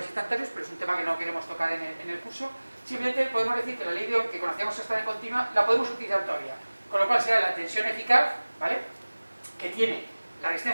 instantáneos, pero es un tema que no queremos tocar en el curso. Simplemente podemos decir que la ley de Ohm que conocíamos hasta en continua la podemos utilizar todavía, con lo cual será la tensión eficaz, ¿vale?, que tiene la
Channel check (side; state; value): both; inverted; correlation -1.00